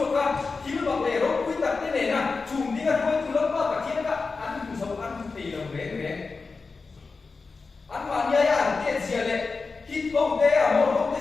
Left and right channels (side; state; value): right; quieter; 4.3 dB